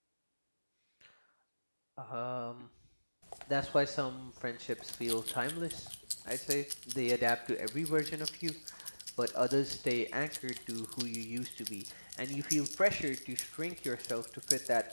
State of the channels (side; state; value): both; inverted; correlation -1.00